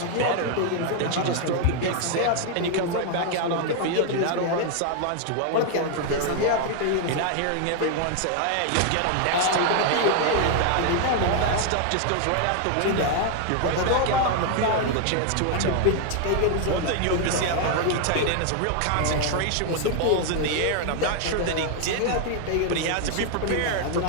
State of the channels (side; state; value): both; different; correlation 0.00